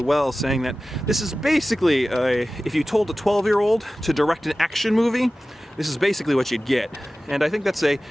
saying that this is basically, if you told a 12-year-old to direct an action movie, this is basically what you'd get. And I think that's a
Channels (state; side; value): normal; both; correlation 0.96